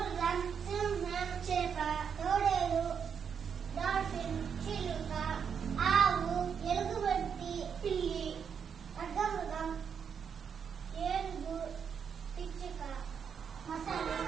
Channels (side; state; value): left; quieter; 7.1 dB